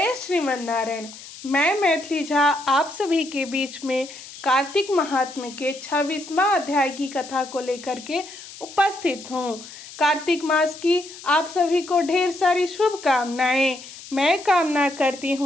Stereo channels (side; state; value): left; noise; hiss, 15 dB below the sound